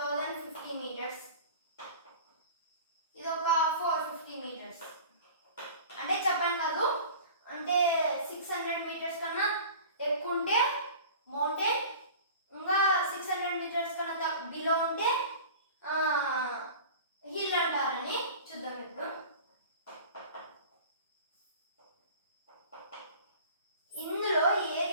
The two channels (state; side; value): inverted; both; correlation -0.40